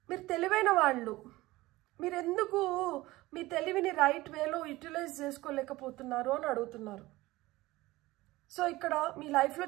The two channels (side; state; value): left; quieter; 18.9 dB